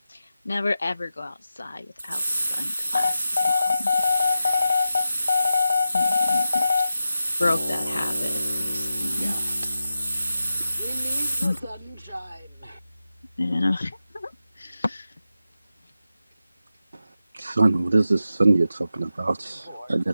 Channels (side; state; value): both; inverted; correlation -0.91